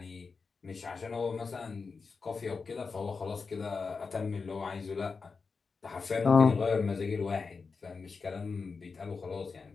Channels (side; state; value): right; quieter; 4.8 dB